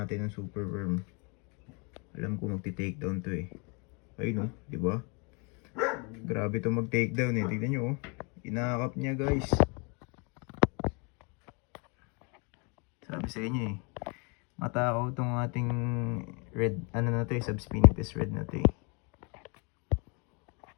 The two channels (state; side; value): quieter; right; 33.1 dB